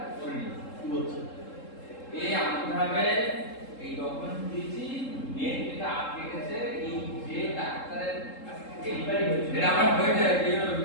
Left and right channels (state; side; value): late; right; 3.7 ms